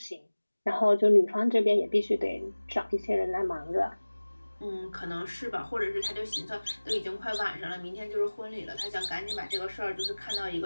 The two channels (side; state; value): both; inverted; correlation -1.00